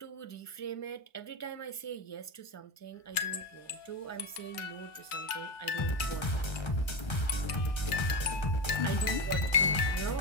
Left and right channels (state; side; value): late; right; 1.8 ms